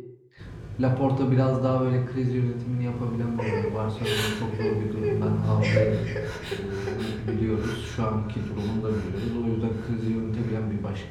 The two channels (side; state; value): both; identical; correlation 1.00